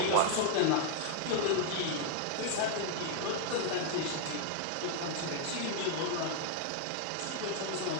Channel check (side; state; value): both; different; correlation 0.00